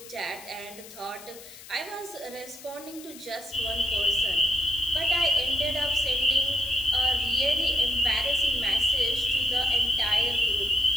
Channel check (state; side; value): noise; left; hiss, 17 dB below the sound